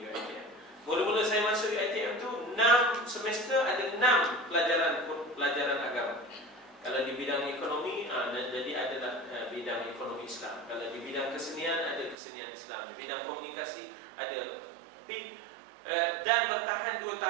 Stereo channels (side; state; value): left; drops out; at 12.2 s